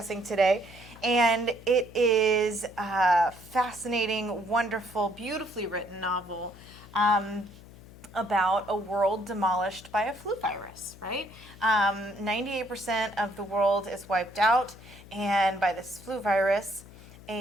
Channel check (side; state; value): left; noise; hum, 19 dB below the sound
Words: today, and it is a fascinating, wonderful, beautifully written novel about a world demolished by a flu virus, right? 98% of the world is wiped out and by this flu virus,